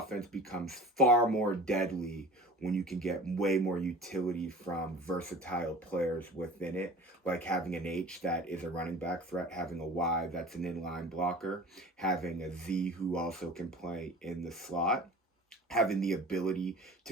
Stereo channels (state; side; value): normal; both; correlation 0.40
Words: becomes far more deadly when you can get way more utility from versatile players within it, like having an H that is a running back threat, having a Y that's an inline blocker, having a Z who also can play in the slot, having the ability